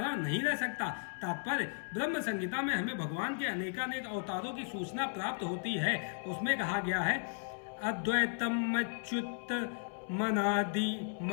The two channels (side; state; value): right; silent; 54 dB below the other